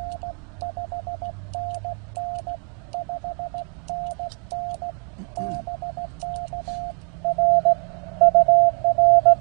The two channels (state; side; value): quieter; left; 38.8 dB